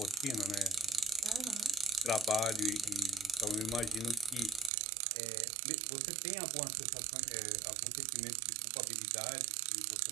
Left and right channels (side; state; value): left; drops out; at 4.7 s